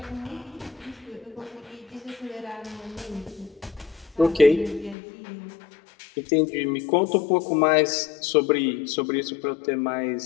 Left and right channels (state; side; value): drops out; right; at 5.0 s